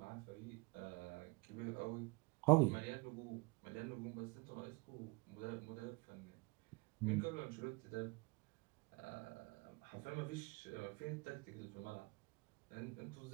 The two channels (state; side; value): quieter; left; 26.4 dB